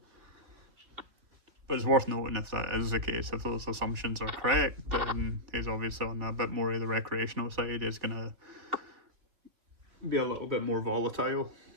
But it's worth noting if that is the case, if those assumptions are correct, then he's obviously on a bit more of the recreational side. He's going to be a little bit more volatile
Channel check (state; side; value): late; left; 3.0 ms